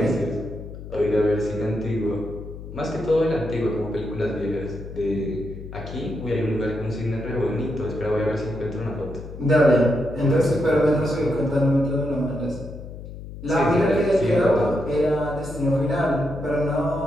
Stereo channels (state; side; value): noise; left; hum, 12 dB below the sound